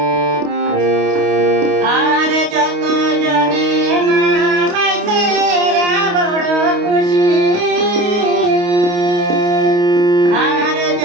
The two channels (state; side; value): late; left; 28 ms